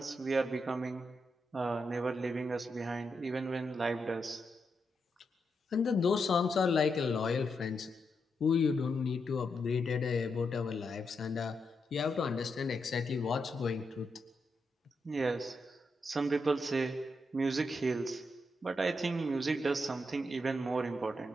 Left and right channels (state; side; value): normal; both; correlation 0.83